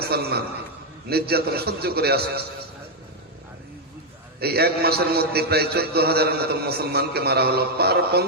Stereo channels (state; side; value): normal; both; correlation 0.00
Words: নির্যাতন সহ্য করে আসে। এই এক মাসের মধ্যে প্রায় 14,000-এর মতো মুসলমানকে মারা হলো। পার